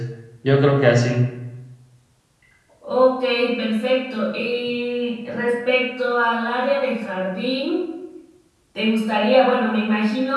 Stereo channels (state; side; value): identical; both; correlation 1.00